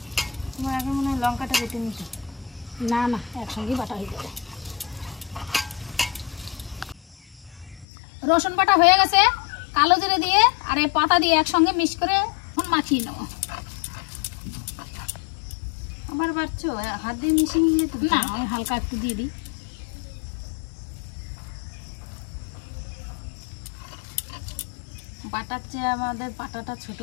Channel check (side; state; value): right; drops out; at 7.9 s